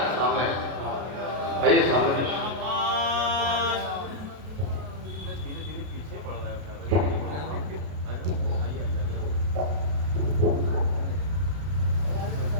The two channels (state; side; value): late; left; 33 ms